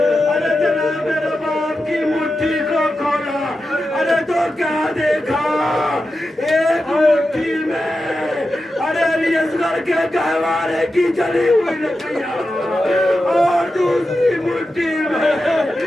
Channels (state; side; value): normal; both; correlation 0.91